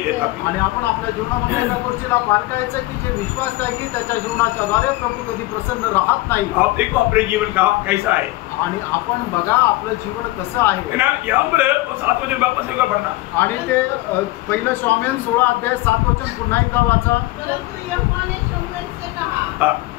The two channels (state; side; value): quieter; right; 19.3 dB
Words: देता, आणि आपण आपल्या जीवनामध्ये त्या गोष्टीला पारखायचं की जे विश्वास त्यागी त्याच्या जीवनाच्या द्वारे प्रभू कधी प्रसन्न राहत नाही। आप देखो अपने जीवन का कैसा है, आणि आपण बघा आपलं जीवन कसं आहे ना, यहाँ पर 7 वचन वापस एक बार पढ़ना, आणि ते पहिलं शमूएल 16 अध्याय 7 वचन पुन्हा एकदा वाचा। परंतु यहोवा ने शमूएल से कहा,